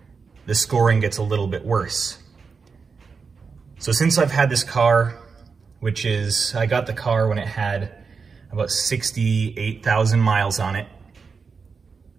the scoring gets a little bit worse. So since I've had this car, I got the car when it had about 68,000 miles on it,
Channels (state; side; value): quieter; left; 5.2 dB